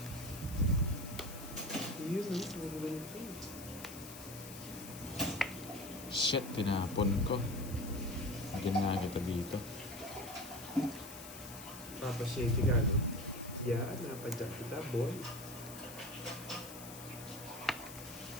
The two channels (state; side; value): noise; left; hiss, 13 dB below the sound